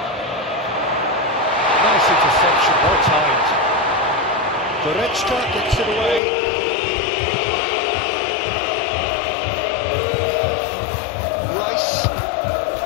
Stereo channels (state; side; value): drops out; right; at 6.2 s